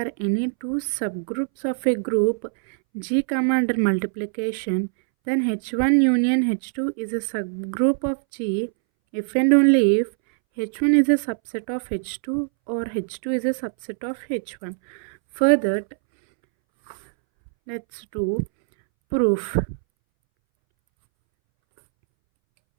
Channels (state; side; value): silent; left; 63 dB below the other